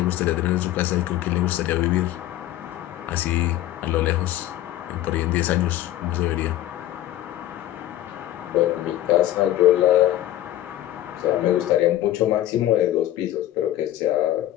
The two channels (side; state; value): right; quieter; 13.6 dB